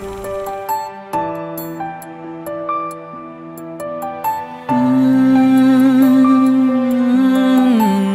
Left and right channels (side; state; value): both; identical; correlation 1.00